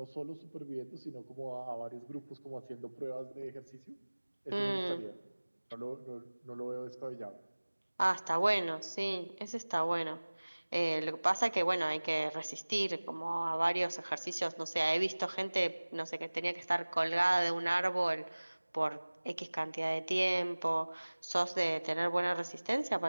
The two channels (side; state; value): both; inverted; correlation -1.00